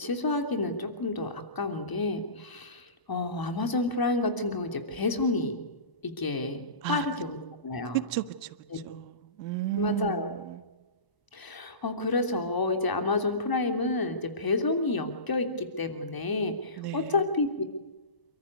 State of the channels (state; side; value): late; right; 1.0 ms